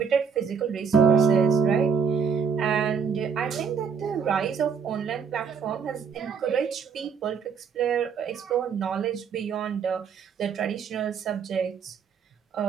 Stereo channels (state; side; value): quieter; left; 6.5 dB